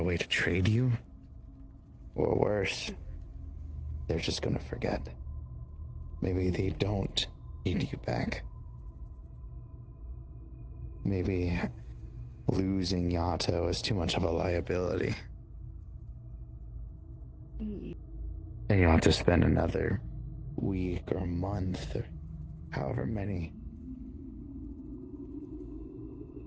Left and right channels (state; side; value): identical; both; correlation 1.00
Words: way to trade you? Or worse, they're just going to forget. Maybe they don't need you back. Maybe losing Yato is too much of a liability. And you'll have to spend another week or month or however many.